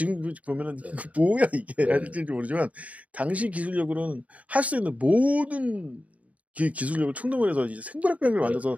보면은 뭐야 이게 할지 모르지만 당시 기술력으로는 할 수 있는 모든 기술력을 충동을 해서 이제 생물학병기를 만들어서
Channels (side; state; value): left; late; 0.069 ms